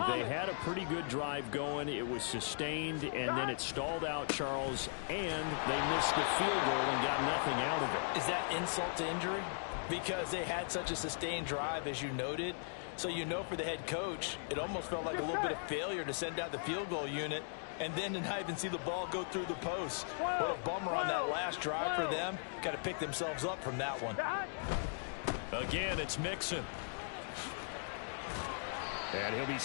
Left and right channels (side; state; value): right; silent; digital silence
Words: They had a pretty good drive going. It was sustained, and then it stalled out, Charles, and they missed the field goal and got nothing out of it. Is that insult to injury? Because they had such a sustained drive, as you noted. So you know for the head coach, it almost felt like a little bit of failure to send out the field goal unit and then to not even see the ball go through the post. What a bummer on that last drive for them. Got to pick themselves up from that one. Again, it's Mixon. And he'll be